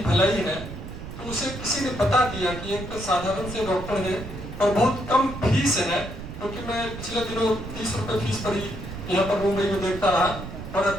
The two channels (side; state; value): right; noise; rumble, 10 dB below the sound